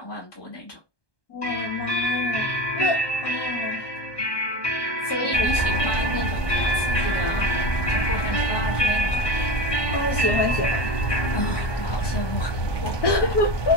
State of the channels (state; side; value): late; right; 1.2 ms